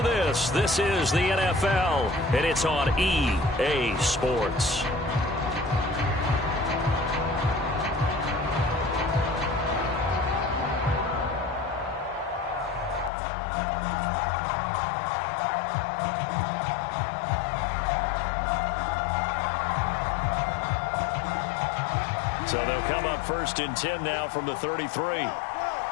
this. This is the NFL, and it's on EA Sports. So they'll come up 1st and 10 now from the 33.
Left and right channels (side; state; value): right; drops out; at 13.1 s